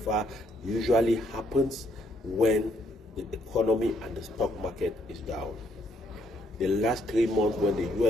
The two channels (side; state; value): both; normal; correlation 0.71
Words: usually happens when the economy and the stock market is down. The last 3 months when the